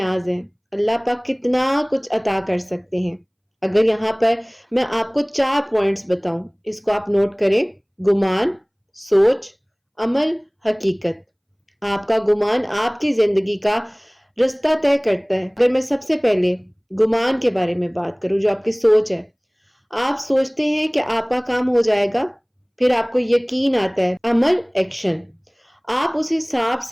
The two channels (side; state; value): both; identical; correlation 1.00